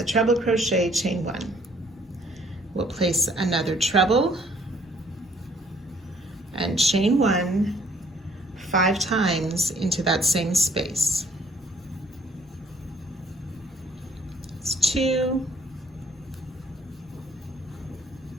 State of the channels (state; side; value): normal; both; correlation 0.61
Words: treble crochet, chain 1. We'll place another treble and chain 1 5 times into that same space. It's 2,